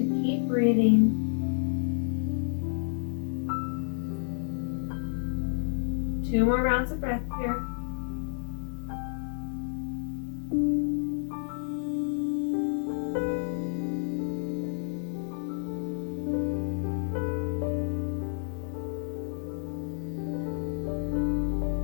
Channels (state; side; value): silent; right; digital silence